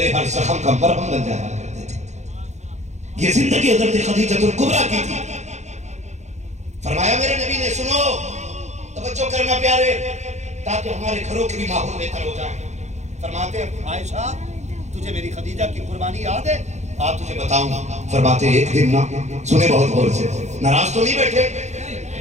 ہر زخم کا مرہم بن جایا کرتے تھے۔ یہ زندگی حضرت خدیجہ الکبریٰ کی تھی۔ فرمایا میرے نبی نے سنو، توجہ کرنا پیارے، تاکہ ہمارے گھروں کے بھی ماحول بہتر ہو جائے۔ فرماتے عائشہ تجھے میری خدیجہ کی قربانی یاد ہے؟ آپ تجھے بتاؤں۔ فرماتے ایک دن نا، سنے بہت غور سے، ناراض تو نہیں بیٹھے؟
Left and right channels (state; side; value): late; left; 0.33 ms